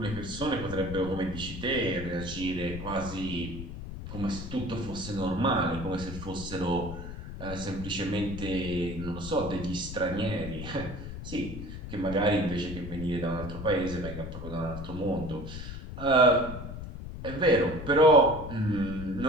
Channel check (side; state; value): left; noise; rumble, 9 dB below the sound